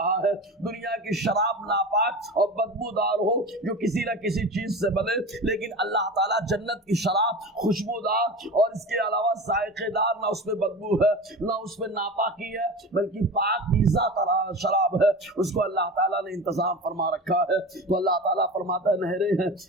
ہے۔ دنیا کی شراب ناپاک اور بدبودار ہو جو کسی نہ کسی چیز سے بنے، لیکن اللہ تعالیٰ جنت کی شراب خوشبودار اور اس کے علاوہ ذائقے دار، نہ اس میں بدبو ہے نہ اس میں ناپاکی ہے، بلکہ پاکیزہ شراب ہے، اس کو اللہ تعالیٰ نے انتظام فرما رکھا ہے۔ تو اللہ تعالیٰ فرماتا ہے نہریں ہیں،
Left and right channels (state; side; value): normal; both; correlation 0.31